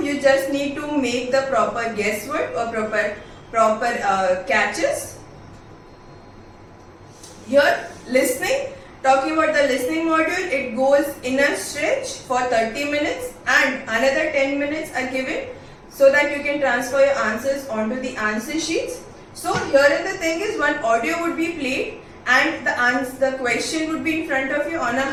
You just need to make the proper guesswork or proper catches. Here listening, talking about the listening module, it goes in a stretch for 30 minutes and another 10 minutes are given so that you can transfer your answers onto the answer sheets. So here the thing is, one audio would be played and the question would be in front of you on a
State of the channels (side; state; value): both; identical; correlation 1.00